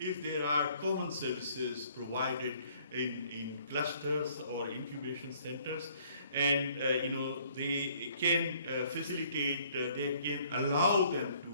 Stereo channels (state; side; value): inverted; both; correlation -0.61